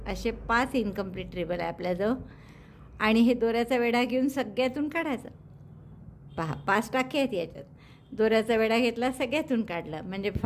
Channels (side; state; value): both; identical; correlation 1.00